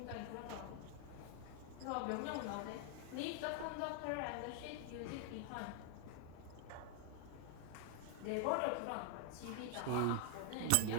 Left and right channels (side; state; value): both; different; correlation 0.00